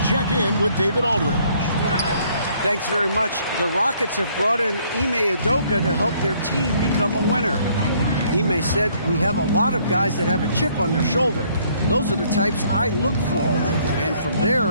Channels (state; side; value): inverted; both; correlation -0.64